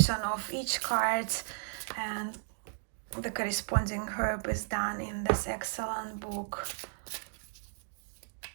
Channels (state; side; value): silent; left; 55 dB below the other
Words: of each card and the corresponding herb is done in this excellent book.